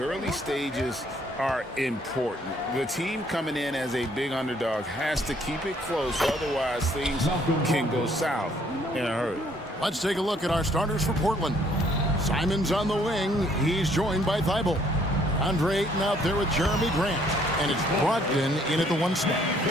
stages are important. The team coming in as a big underdog has to keep it close, otherwise things can go south in a hurry. Let's take a look at our starters for Portland. Simon's on the wing. He's joined by Thibault. Andre Ayton out there with Jeremy Grant. And it's Brogdon in at the 1 spot.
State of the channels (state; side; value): normal; both; correlation 0.64